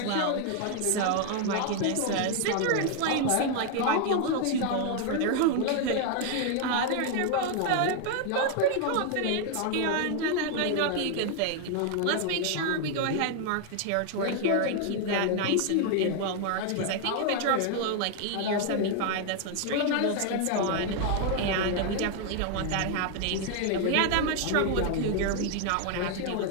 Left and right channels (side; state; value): both; different; correlation 0.00